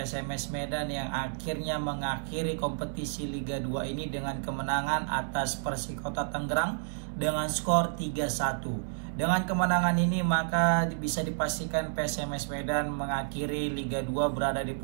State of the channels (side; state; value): left; silent; 58 dB below the other